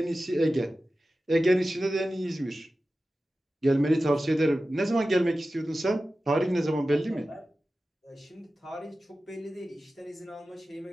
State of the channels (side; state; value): both; normal; correlation 0.94